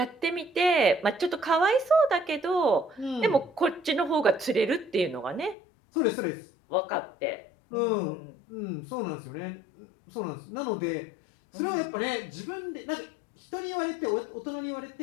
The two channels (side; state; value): right; drops out; at 5.6 s